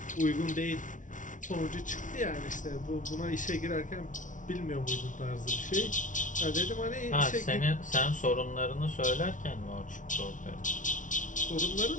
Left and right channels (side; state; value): right; late; 0.37 ms